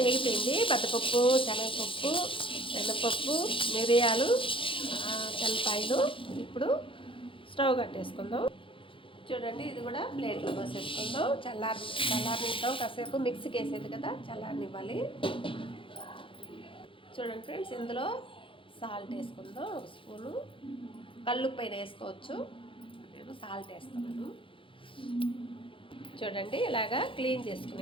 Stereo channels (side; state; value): right; late; 0.25 ms